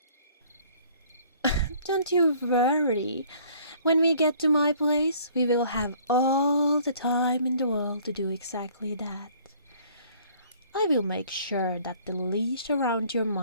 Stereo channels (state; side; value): inverted; both; correlation -0.56